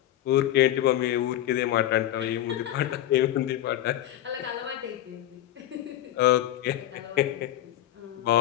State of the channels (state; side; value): quieter; right; 13.0 dB